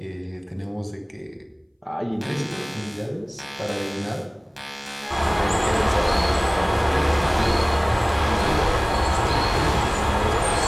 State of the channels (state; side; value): identical; both; correlation 1.00